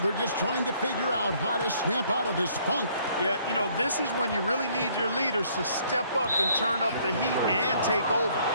just trying to figure out how to snap out of this funk. Yeah, you know, this is when you really need your leaders to step up and turn up the heat and take over.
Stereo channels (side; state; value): both; inverted; correlation -0.63